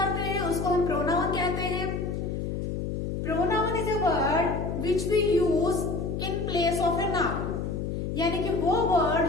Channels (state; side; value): noise; left; hum, 3 dB below the sound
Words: हैं उसको हम प्रोनाउन कहते हैं. Pronoun is a word which we use in place of a noun, यानी कि वो